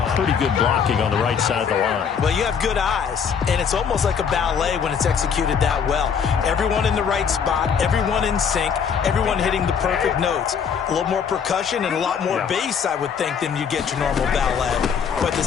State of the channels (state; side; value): quieter; right; 6.9 dB